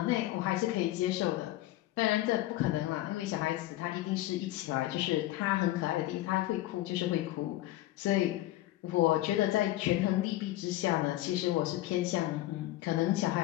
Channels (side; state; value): right; quieter; 15.9 dB